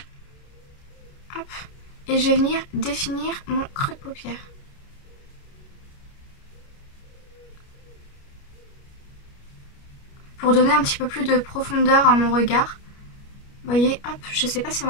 Hop. Et je vais venir définir mon creux de paupière. Pour donner un petit peu plus de profondeur à mon regard. Vous voyez, hop, je sais pas si on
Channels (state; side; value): late; right; 29 ms